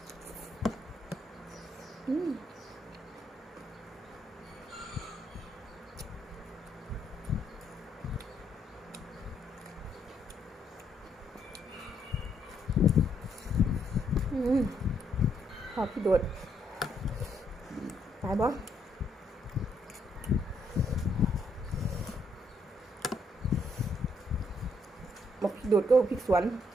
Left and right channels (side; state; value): both; normal; correlation 0.73